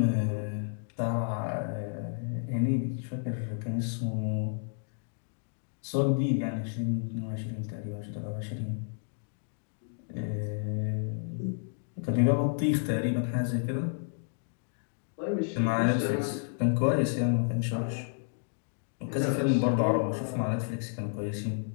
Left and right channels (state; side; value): silent; right; digital silence